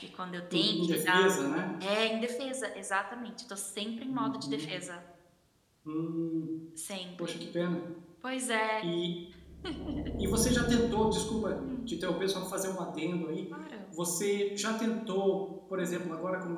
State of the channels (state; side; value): identical; both; correlation 1.00